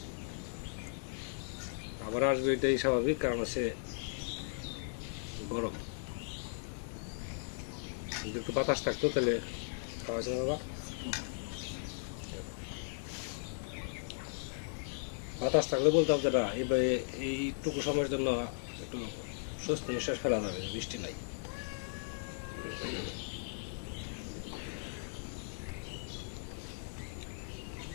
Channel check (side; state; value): right; silent; 53 dB below the other